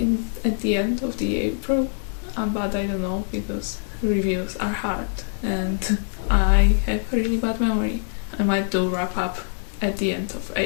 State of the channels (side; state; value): right; silent; digital silence